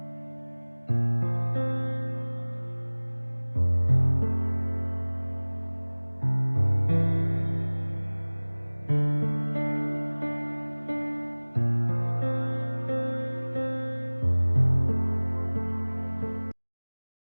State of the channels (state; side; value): inverted; both; correlation -1.00